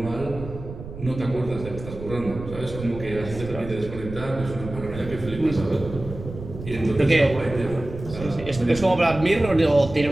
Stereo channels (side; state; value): right; noise; rumble, 11 dB below the sound